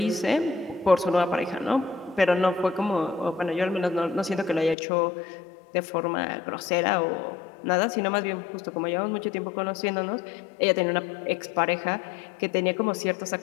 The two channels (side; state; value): right; drops out; at 4.8 s